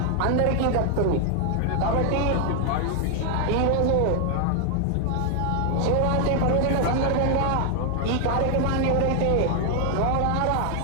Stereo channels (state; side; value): different; both; correlation 0.00